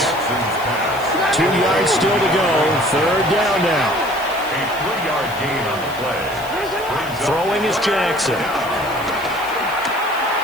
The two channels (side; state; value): left; noise; hiss, 18 dB below the sound